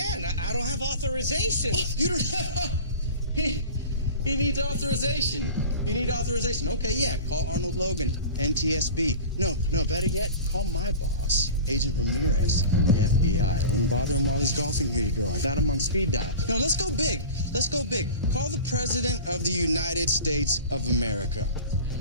I don't have authorization. Oh, you don't have... He needs authorization. You need authorization. Okay, yeah. Call Arnold Logan, NTSB. No, better yet, call my boss, Agent Ramirez from the FBI. I wouldn't bother him while he's golfing. Here you go. I got him on speed dial. No, let's go big. Let's go big. Call the President of the United States of America.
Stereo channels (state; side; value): inverted; both; correlation -0.35